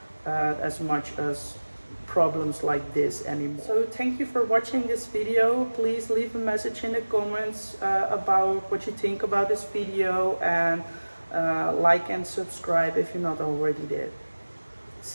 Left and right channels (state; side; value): inverted; both; correlation -1.00